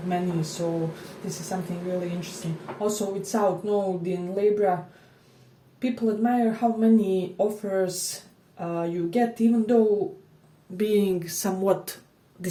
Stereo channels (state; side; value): identical; both; correlation 1.00